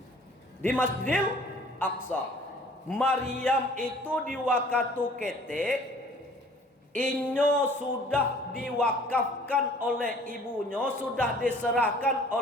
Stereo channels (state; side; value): normal; both; correlation 0.52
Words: Di Masjidil Aqsa. Maryam itu di waktu ketik inyo sudah diwakafkan oleh ibunya, sudah diserahkan